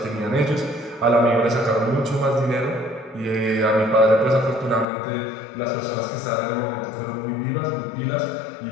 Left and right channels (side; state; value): right; drops out; at 4.9 s